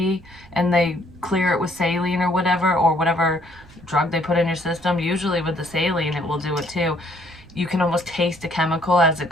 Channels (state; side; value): noise; right; rumble, 23 dB below the sound